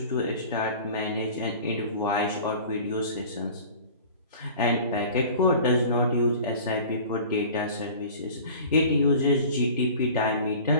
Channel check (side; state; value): both; inverted; correlation -0.42